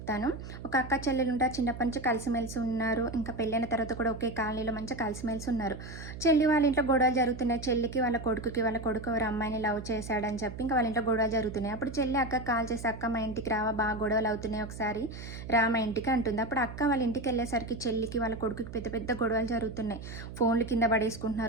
ఒక అక్క చెల్లెలు ఉంటారు. చిన్నప్పటి నుంచి కలిసిమెలిసి ఉన్నారు. ఇంకా పెళ్ళైన తర్వాత కూడా ఒకే కాలనీలో మంచిగా కలిసిమెలిసి ఉన్నారు. చెల్లి వాళ్ళ ఇంట్లో గొడవలు జరుగుతున్నాయి. చెల్లికి వాళ్ళ కొడుకు ఎవరో అమ్మాయిని లవ్ చేశాడని చెప్పి ఇంకా వాళ్ళ ఇంట్లో గొడవలు జరుగుతున్నాయి. అప్పుడు చెల్లి అక్కకి కాల్ చేసి, "అక్క మా ఇంటికి రావా, బాగా గొడవలు అవుతున్నాయి, ఒకసారి రా మా ఇంటికి" అంటుంది. అప్పుడు అక్క వాళ్ళ ఇంటికి వెళ్ళేసరికి చెల్లికి వాళ్ళ కొడుకుకి పెద్ద పెద్ద గొడవలు జరుగుతున్నాయి. ఫోన్లు కింద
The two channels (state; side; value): noise; right; hum, 11 dB below the sound